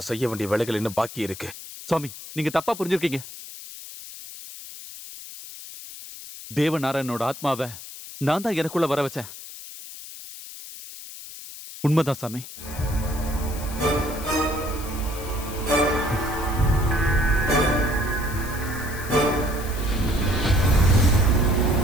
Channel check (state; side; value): noise; left; hiss, 13 dB below the sound